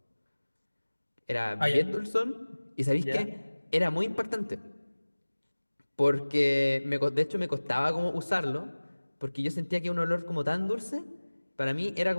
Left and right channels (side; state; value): both; inverted; correlation -1.00